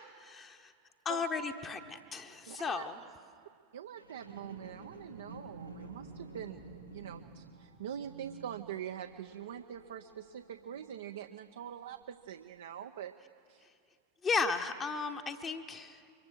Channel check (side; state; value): both; normal; correlation 0.38